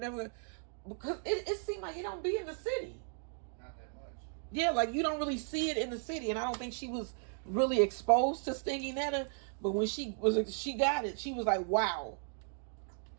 because it seemed like it don't be in the city. Not that much. Yeah, like you don't really see it in the city. And I don't think she was really exposed to stinging nettle. But when she got it, she was like, wow.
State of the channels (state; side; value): silent; left; 54 dB below the other